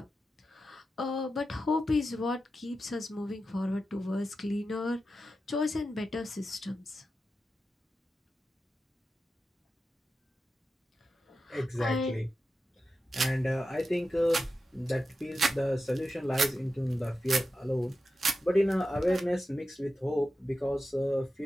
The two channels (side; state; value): both; normal; correlation 0.91